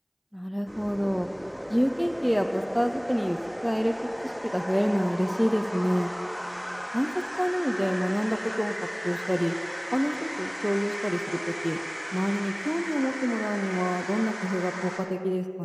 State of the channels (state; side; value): identical; both; correlation 1.00